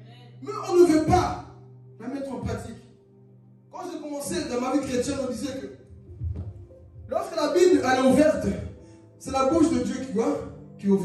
Mais on ne veut pas la mettre en pratique. Quand j'ai commencé dans ma vie chrétienne, on disait que lorsque la Bible elle est ouverte, c'est la bouche de Dieu qui est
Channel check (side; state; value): both; identical; correlation 1.00